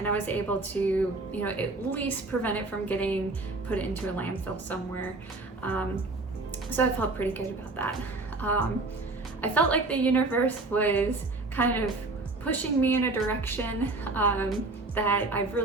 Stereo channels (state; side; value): quieter; left; 3.2 dB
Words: I was able to, at least prevent it from getting put into a landfill somewhere. So I felt pretty good about that. I felt like the universe was kind of pushing me in a direction that I've